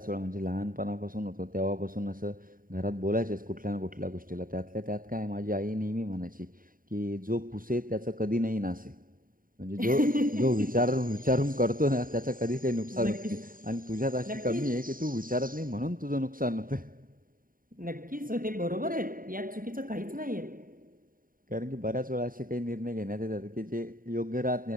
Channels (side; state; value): left; late; 0.41 ms